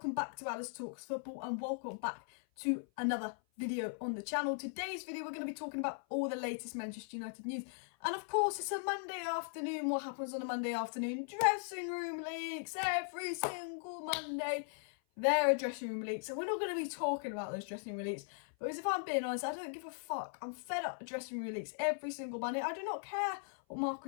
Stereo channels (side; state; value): right; silent; 52 dB below the other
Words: back to Alice Talks Football, and welcome back to another video on the channel. Today's video we're going to be talking about all the latest Manchester United news, and of course it's a Monday afternoon. What happens on a Monday afternoon? Dressing room leaks. Every single Monday there are dressing room leaks, and we're not going to be talking about those dressing room leaks because if I'm being honest, I don't give a fuck. I'm fed up with dressing room leaks every single Monday. I do not care what